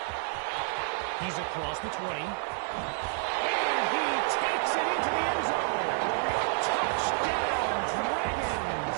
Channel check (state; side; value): silent; left; 58 dB below the other